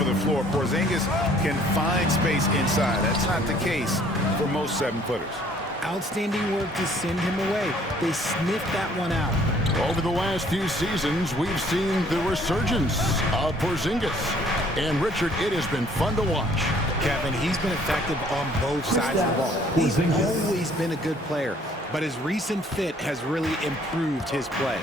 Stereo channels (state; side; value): normal; both; correlation 0.59